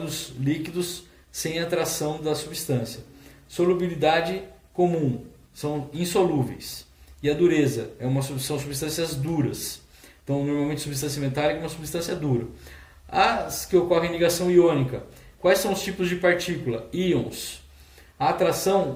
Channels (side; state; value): both; identical; correlation 1.00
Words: líquidos, sem atração da substância. Solubilidade comum, são insolúveis. E a dureza, são substâncias duras. Então, normalmente, substância metálica é uma substância dura. As que ocorrem em ligação iônica. Quais são os tipos de partícula? Íons. A